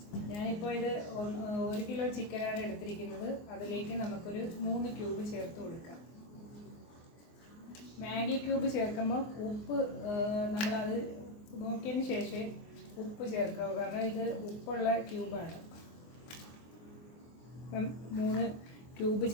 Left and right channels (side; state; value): right; late; 24 ms